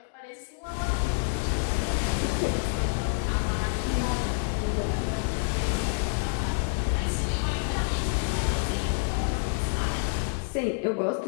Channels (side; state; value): right; silent; digital silence